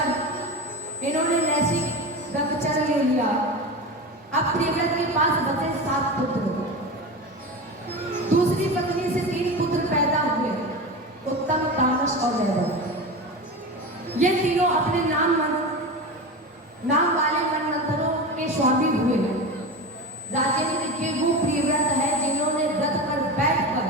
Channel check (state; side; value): normal; both; correlation 0.25